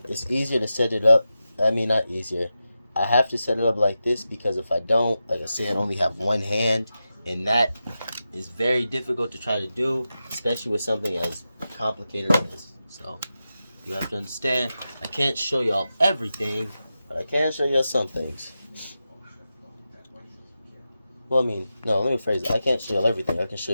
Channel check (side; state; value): both; inverted; correlation -0.91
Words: it's easier to set it up. I mean, not easier. I have to set it up like this because if I don't, like I said, I only have one hand, and that is very difficult to try to do, especially with something as complicated as this. So you have to understand, I can't show y'all everything, but I can show y'all some things. Well, I mean, no, let me phrase it. I can't show y'all everything. I can show